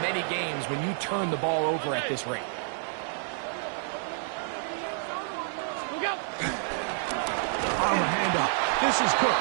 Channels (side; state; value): left; silent; digital silence